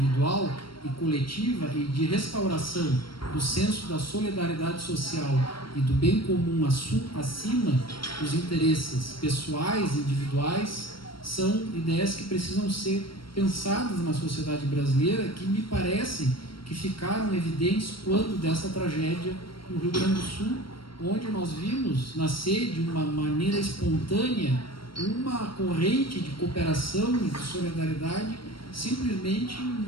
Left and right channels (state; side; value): late; right; 0.73 ms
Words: e coletiva e de restauração do senso da solidariedade social e do bem comum acima dos interesses pessoais e individuais são ideias que precisam ser pensadas na sociedade brasileira, que me parecem que ficaram evidentes quando dessa tragédia no Rio Grande do Sul, onde nós vimos nascer de uma maneira espontânea uma corrente de cooperação e de solidariedade simplesmente